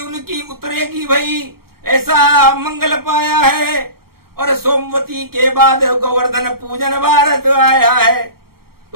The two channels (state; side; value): late; left; 0.94 ms